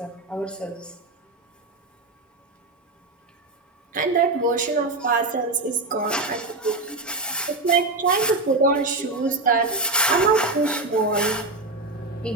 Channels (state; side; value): quieter; left; 3.1 dB